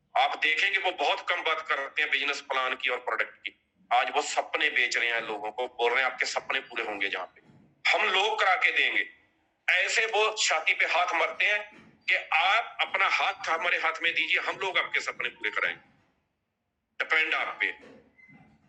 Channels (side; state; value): both; identical; correlation 1.00